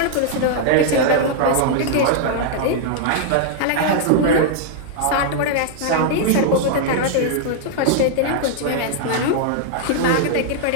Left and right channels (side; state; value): both; different; correlation -0.01